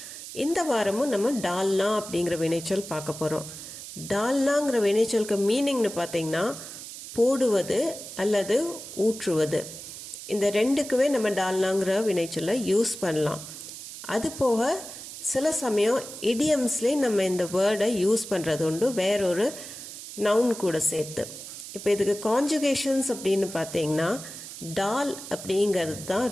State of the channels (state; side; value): noise; right; hiss, 12 dB below the sound